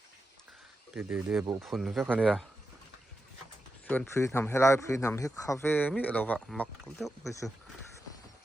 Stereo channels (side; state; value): both; normal; correlation 0.89